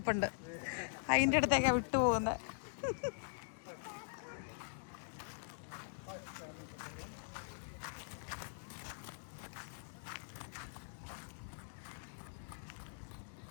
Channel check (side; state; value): right; silent; digital silence